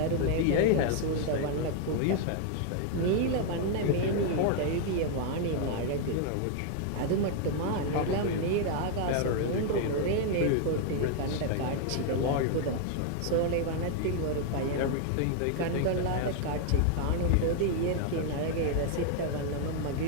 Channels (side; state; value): both; different; correlation 0.00